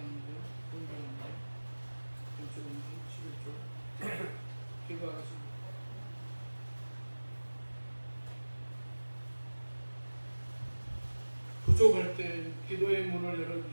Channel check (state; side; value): inverted; both; correlation -1.00